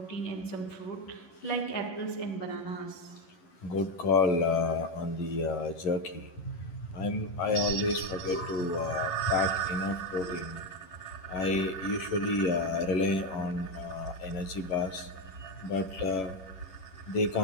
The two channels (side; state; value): right; late; 11 ms